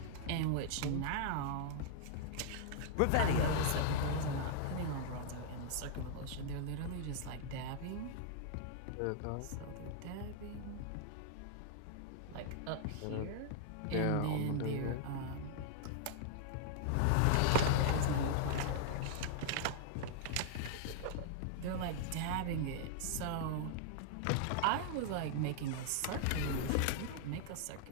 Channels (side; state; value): both; different; correlation -0.01